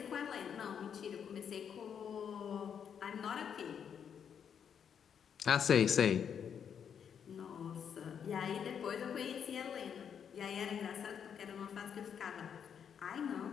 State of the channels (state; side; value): quieter; right; 7.8 dB